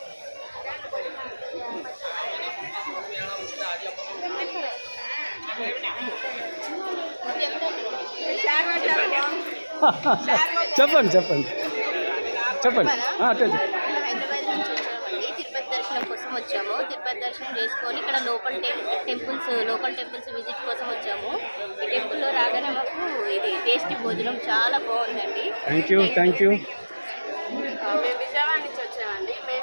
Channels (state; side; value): inverted; both; correlation -1.00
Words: చెప్పండి చెప్పండి చెప్పండి. హైదరాబాద్ నుంచి వచ్చామండి. తిరుపతి దర్శనం కోసం వచ్చాము. తిరుపతి దర్శనం చేసుకొని ఇక్కడ లోకల్ టెంపుల్స్ విజిట్ కోసం వచ్చాము. ఈ టెంపుల్లో రాగానే మాకు ఇది టేస్టీ భోజనం చాలా బాగుందండి. Thank you. మేము విజయవాడ నుంచి వచ్చామండి. మేము